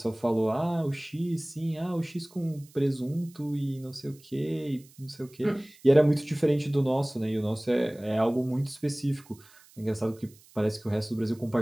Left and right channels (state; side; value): noise; right; hiss, 26 dB below the sound